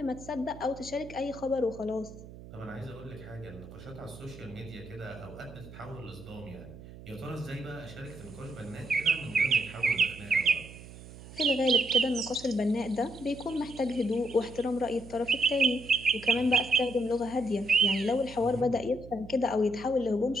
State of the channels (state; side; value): noise; right; hum, 16 dB below the sound